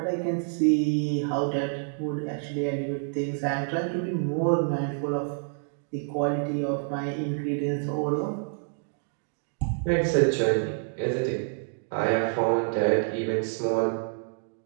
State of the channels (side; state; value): left; silent; 60 dB below the other